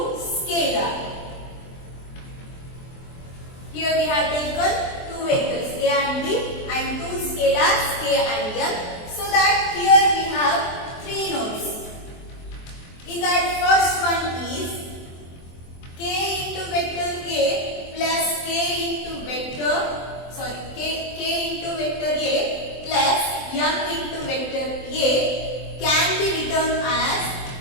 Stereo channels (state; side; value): late; right; 23 ms